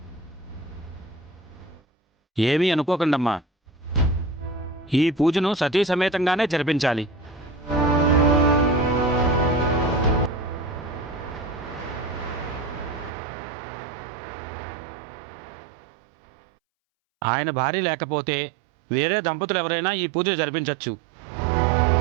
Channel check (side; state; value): left; drops out; at 13.1 s